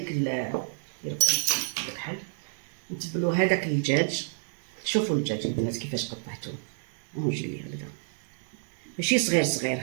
الكحل، نتبلوا هذاك الدجاج. شوفوا الدجاج البنات كيفاش قطعته، ونجي لي هكذا ماشي صغير صغير،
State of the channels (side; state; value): left; silent; digital silence